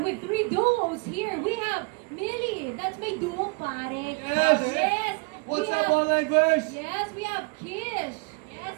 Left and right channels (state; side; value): quieter; left; 31.7 dB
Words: 3 duos here. We have Millie. That's my duo, pare. Yes. Yes. What's We up, have- Online Verse? Yes, we have Kish. Yes,